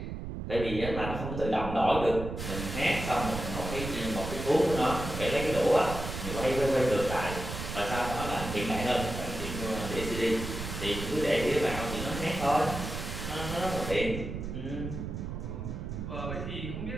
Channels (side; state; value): right; noise; rumble, 6 dB below the sound